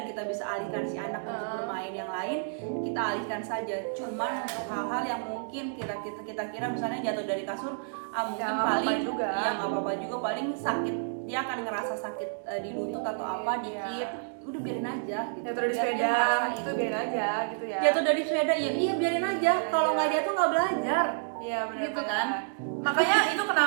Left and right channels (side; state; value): left; silent; digital silence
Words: kita bisa alihkan si anak untuk bermain yang lain, kita alihkan saja. Cuman untuk hal-hal yang mungkin kita kira misalnya jatuh dari kasur, mungkin nggak paling apa-apa juga. ya nggak apa-apa juga, paling sakit, dia akan ngerasa sakit di lutut atau apa Iya. dikit, udah biarin aja gitu. Jatuh dari Biar dia sepeda, ngerasain. itu biarin aja gitu ya. Jatuh dari sepeda ya iya biarin aja, kalau nggak jatuh nggak belajar. Iya benar. Gitu kan. Makanya itu